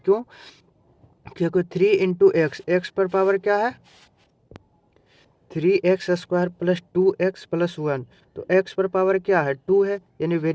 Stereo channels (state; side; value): identical; both; correlation 1.00